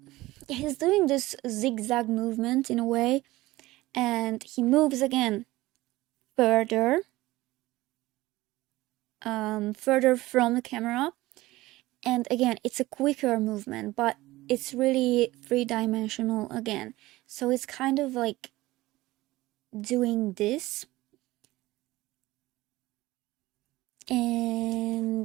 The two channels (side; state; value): left; quieter; 18.5 dB